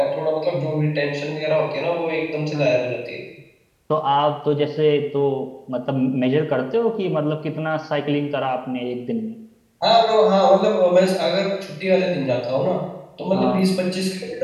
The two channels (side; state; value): both; identical; correlation 1.00